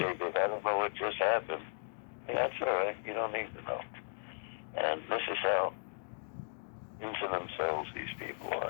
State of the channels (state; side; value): silent; right; digital silence